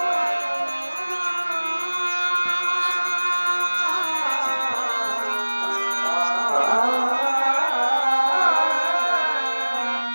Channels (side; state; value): both; inverted; correlation -1.00